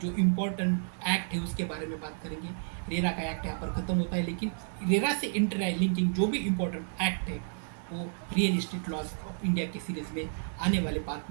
जो इम्पोर्टेंट एक्ट है उसके बारे में बात करेंगे। रेरा का एक्ट यहाँ पर ख़त्म होता है, लेकिन रेरा से इंटर लिंकिंग जो भी इम्पोर्टेंट एक्ट है वो real estate laws of India की सीरीज़ में आने वाले पार्ट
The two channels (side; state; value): left; silent; digital silence